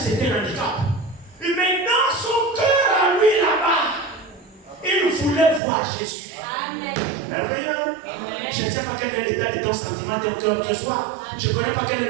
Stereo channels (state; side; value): drops out; left; at 5.6 s